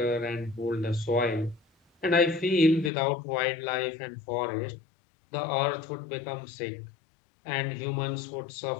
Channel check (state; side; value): drops out; right; at 2.9 s